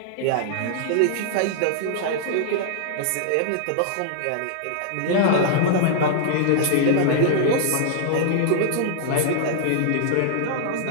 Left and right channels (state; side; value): different; both; correlation -0.01